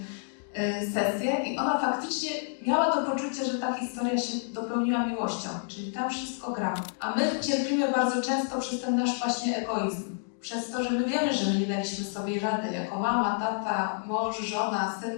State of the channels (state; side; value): silent; right; 59 dB below the other